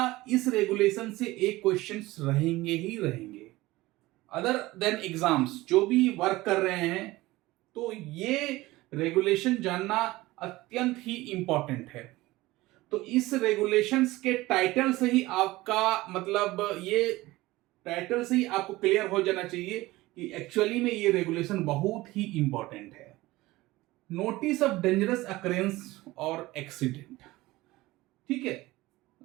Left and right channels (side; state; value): left; quieter; 19.0 dB